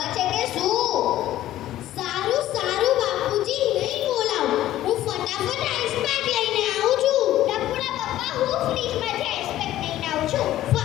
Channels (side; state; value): right; quieter; 13.8 dB